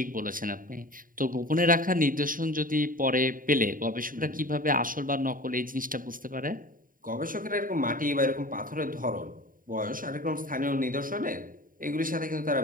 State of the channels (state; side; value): late; left; 0.40 ms